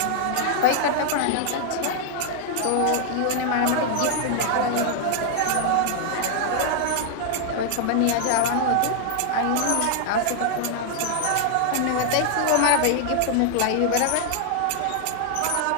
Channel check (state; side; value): different; both; correlation 0.00